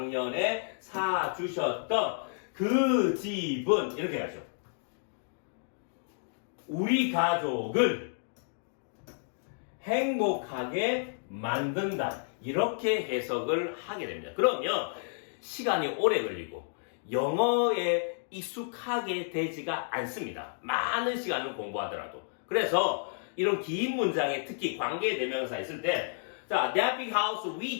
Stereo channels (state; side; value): silent; right; digital silence